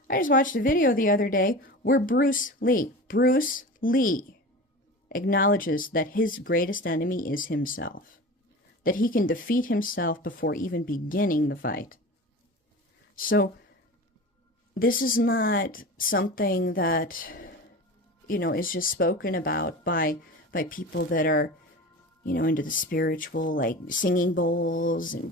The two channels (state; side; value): normal; both; correlation 0.32